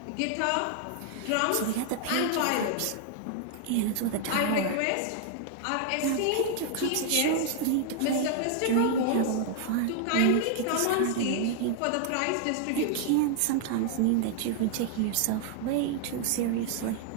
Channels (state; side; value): different; both; correlation 0.00